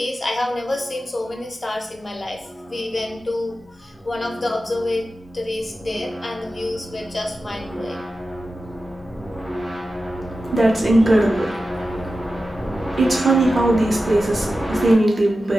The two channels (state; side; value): normal; both; correlation 0.93